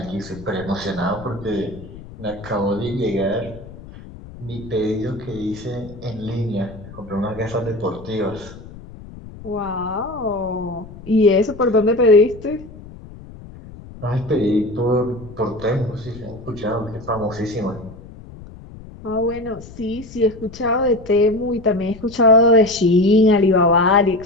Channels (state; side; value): noise; left; rumble, 17 dB below the sound